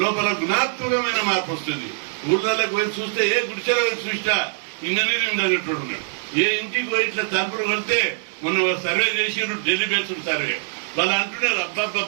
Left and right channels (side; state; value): left; silent; digital silence